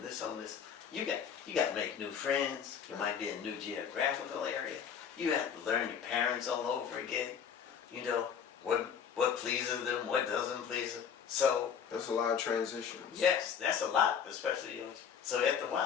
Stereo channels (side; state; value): right; quieter; 7.5 dB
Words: this home, you got to make new friends. You might be in a new geographical area. You have to learn your parents all over again. You know, what pleases them, what doesn't please them. So that's a lot of transitions. Yes, that's a lot, especially so after a